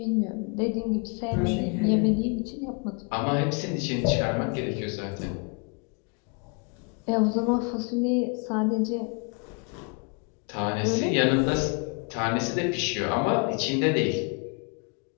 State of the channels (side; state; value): right; quieter; 35.2 dB